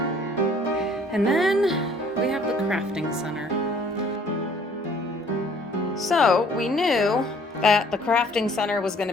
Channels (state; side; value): normal; both; correlation 0.57